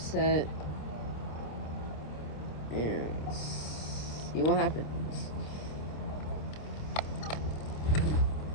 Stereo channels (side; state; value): right; late; 26 ms